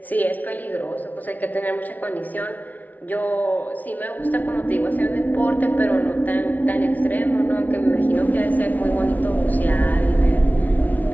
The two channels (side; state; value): right; late; 0.077 ms